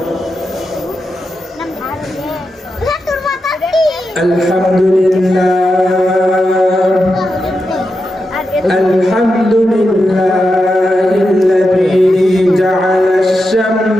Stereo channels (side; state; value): both; normal; correlation 0.88